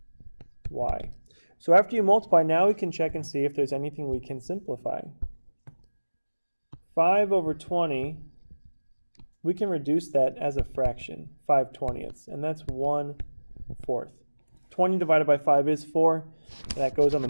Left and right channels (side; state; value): both; inverted; correlation -1.00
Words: y. So after you multiply, now we can check and see if there's anything we can simplify. 5 over 20, we can reduce that as a fraction, 5/20ths, and that's 1/4. 20 divided by 5 is 4. That goes on the